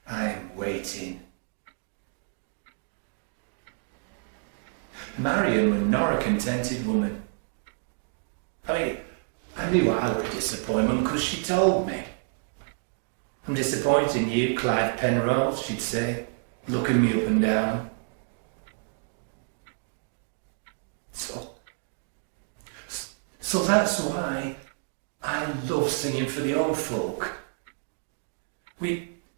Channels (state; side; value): silent; left; 59 dB below the other